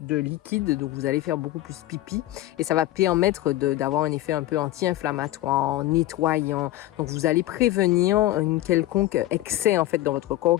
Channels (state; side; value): quieter; right; 15.2 dB